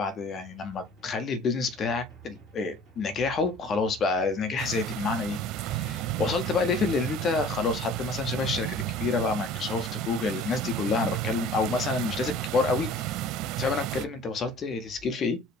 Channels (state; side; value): normal; both; correlation 0.47